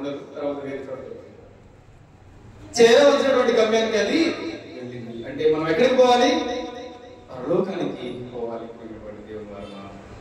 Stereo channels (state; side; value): identical; both; correlation 1.00